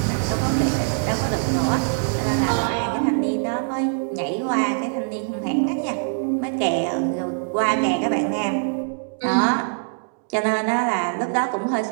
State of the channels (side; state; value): left; silent; digital silence